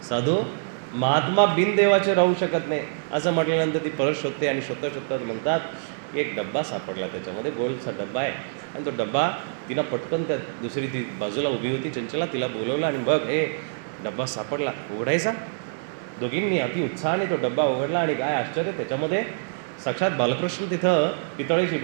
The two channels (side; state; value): left; silent; 58 dB below the other